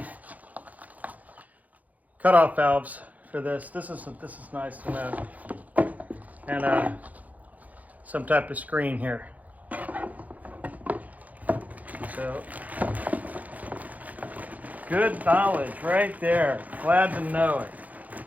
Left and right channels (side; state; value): left; late; 0.077 ms